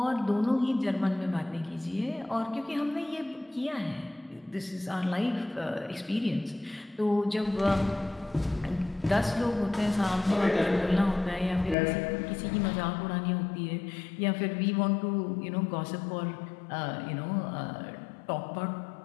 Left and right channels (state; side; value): drops out; right; at 11.8 s